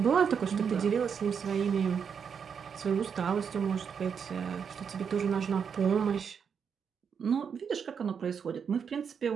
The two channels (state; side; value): quieter; left; 6.8 dB